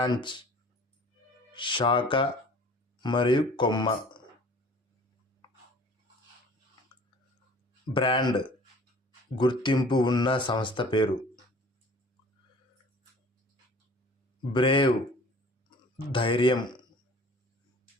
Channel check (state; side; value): normal; both; correlation 0.48